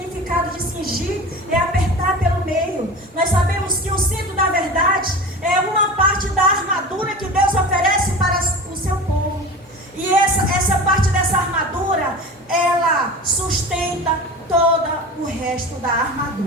de cingir é apertar pelo meio. Nós sabemos que o cinto da verdade é uma parte da armadura que Deus oferece para o seu povo. E essa parte dessa armadura, ela sustenta todo o resto da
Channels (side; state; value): both; normal; correlation 0.33